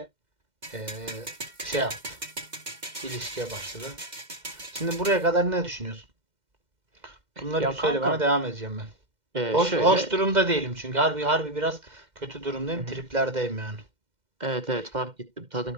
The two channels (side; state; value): left; late; 2.1 ms